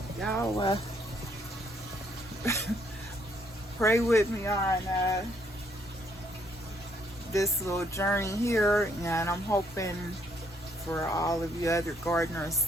Y'all pray with me on this little journey here, and I'm hoping for all of you other gardeners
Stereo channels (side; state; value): both; normal; correlation 0.69